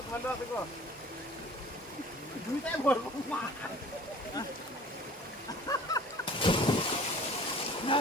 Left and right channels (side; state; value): both; normal; correlation 0.47